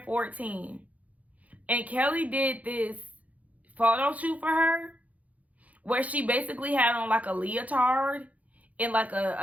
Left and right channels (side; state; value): left; late; 0.072 ms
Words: 14. And Kelly did this photo shoot for her where she basically had on like a leotard and like